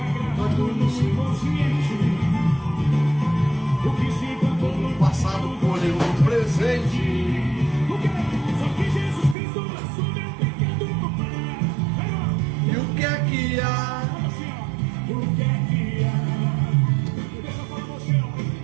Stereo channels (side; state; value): left; drops out; at 9.3 s